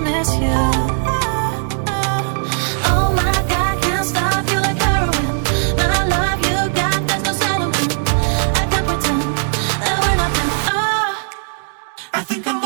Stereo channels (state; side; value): silent; left; digital silence